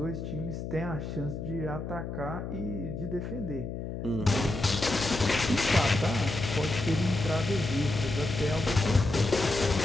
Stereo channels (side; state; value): left; noise; hum, 6 dB below the sound